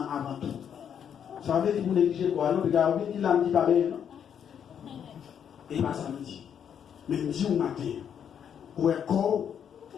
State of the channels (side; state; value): right; quieter; 8.4 dB